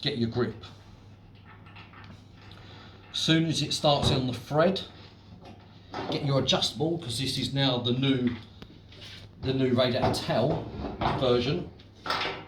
grip. As soon as it starts on the thread, get your adjustable, because this is now the new the new Radiator towel version.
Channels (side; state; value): both; identical; correlation 1.00